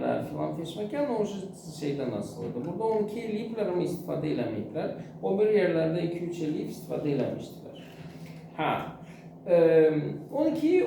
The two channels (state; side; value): identical; both; correlation 1.00